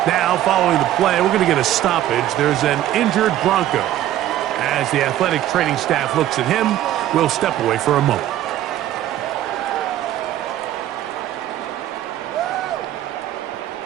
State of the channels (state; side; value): quieter; left; 12.9 dB